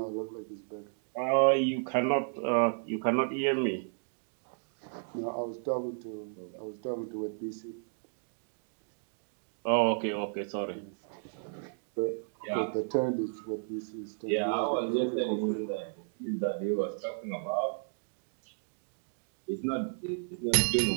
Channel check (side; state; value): left; silent; digital silence